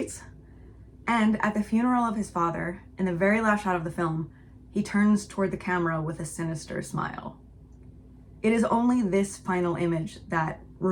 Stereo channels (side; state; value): both; identical; correlation 1.00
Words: and at the funeral of his father, in the very last shot of the film, he turns toward the camera with a sinister smile. It is only this final image that